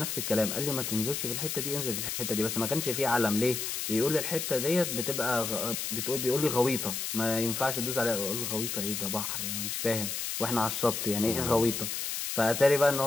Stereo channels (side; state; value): left; noise; hiss, 3 dB below the sound